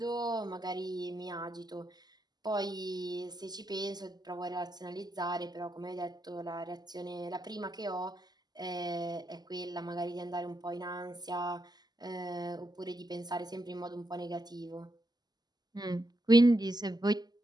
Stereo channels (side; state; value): left; late; 0.20 ms